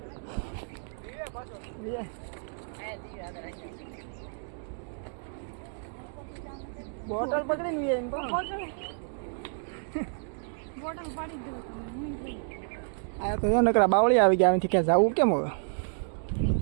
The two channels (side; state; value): left; silent; digital silence